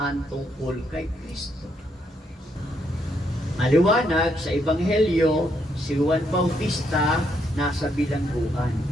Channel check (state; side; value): normal; both; correlation 0.75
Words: tungkol kay Kristo? Maliwanag sa Ebanghelyo, si Juan Bautista nasa bilangguan.